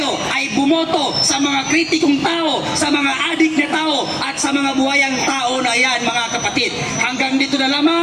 ay bumoto sa mga kritikong tao, sa mga adik na tao at sa mga buhayang tao na yan, mga kapatid. Hanggang dito na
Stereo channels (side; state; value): both; identical; correlation 1.00